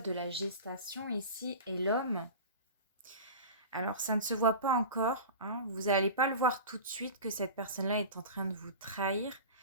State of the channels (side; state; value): both; inverted; correlation -0.33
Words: la gestation ici et l'homme. Alors, ça ne se voit pas encore, hein. Vous n'allez pas le voir tout de suite que cette personne-là est en train de vous trahir.